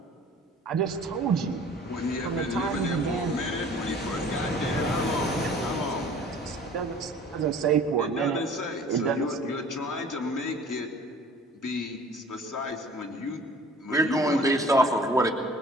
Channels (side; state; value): both; normal; correlation 0.48